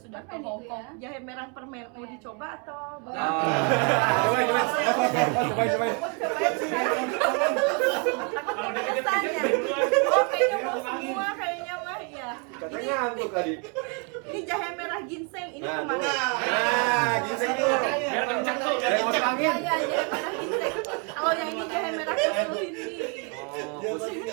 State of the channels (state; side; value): quieter; left; 36.2 dB